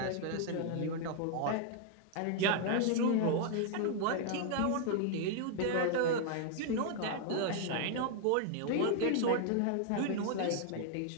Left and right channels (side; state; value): both; different; correlation 0.00